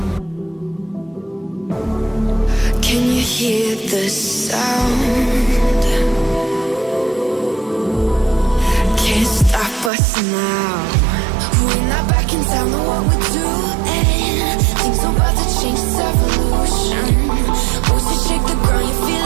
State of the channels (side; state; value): left; drops out; at 9.9 s